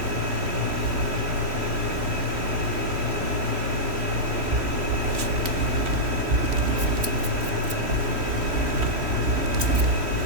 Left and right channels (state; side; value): late; left; 3.1 ms